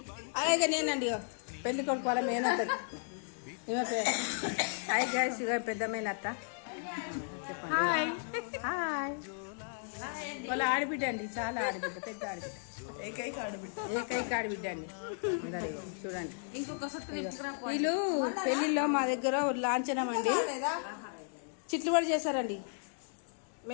అలాగే నేనండి పెళ్లి కొడుకు వాళ్ళ మేనత్త. హాయ్ గైస్, ఇక పెద్ద మేనత్త. చెప్పండి. Hi hi. వాళ్ళ ఆడబిడ్డ అండి, చాలా ఆడబిడ్డ, పెద్ద ఆడబిడ్డ, ఏకైక ఆడబిడ్డ అండి. చూడండి, వీళ్ళు పెళ్లిలో మా దగ్గర లాంఛనం అండి చిట్లుబడి చేశారండి.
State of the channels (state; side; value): silent; right; digital silence